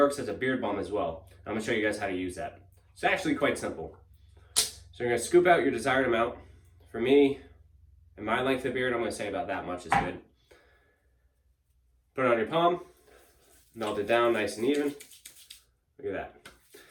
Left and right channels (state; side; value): identical; both; correlation 1.00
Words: as a beard balm as well. I'm gonna show you guys how to use that. It's actually quite simple. So you're gonna scoop out your desired amount. For me, and my length of beard, I'm gonna say about that much is good. Put it on your palm, melt it down nice and even. Look at that.